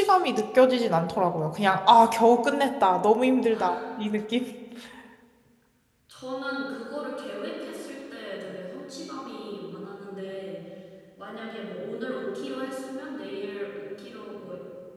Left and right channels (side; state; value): both; identical; correlation 1.00